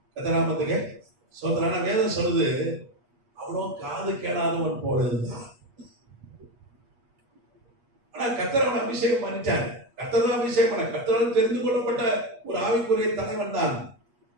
கத்தராமத்துக்கு சோதரான வேதம் சொல்லுது, அவனும் காது கேளாதவன் போல இருந்தான். ஆனா கத்தரவன் அபிஷேகம் பண்ணிட்டார். கத்தர் அபிஷேகம் பண்ண, கத்தரால் தெரிந்து கொள்ளப்பட்ட ஒரு ஆவிக்குரிய தலைவன் தான்.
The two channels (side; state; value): left; late; 8.3 ms